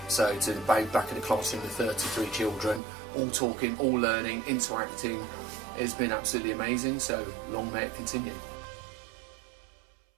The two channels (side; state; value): left; drops out; at 2.8 s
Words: So to be back in the classroom with 33 children, all talking, all learning, interacting, has been absolutely amazing. So long may it continue.